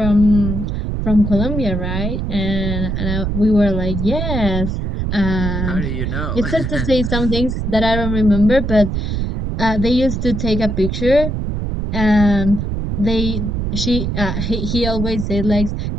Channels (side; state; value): right; noise; rumble, 2 dB below the sound